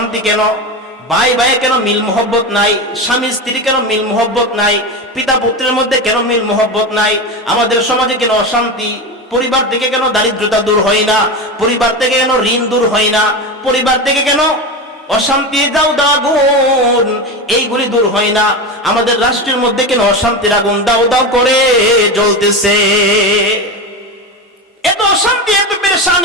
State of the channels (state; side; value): normal; both; correlation 0.20